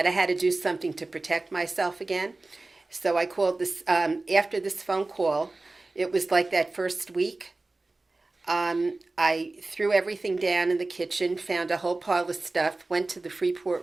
had to do something to protect myself again. So I called this, after this phone call, it was like that first week. I threw everything down in the kitchen, found a whole pile of stuff, went to the Freeport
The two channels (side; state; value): left; quieter; 3.2 dB